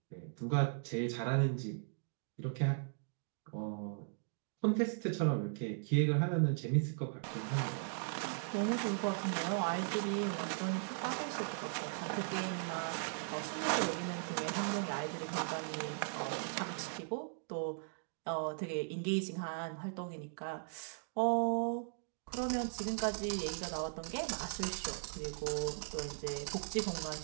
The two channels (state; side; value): silent; left; digital silence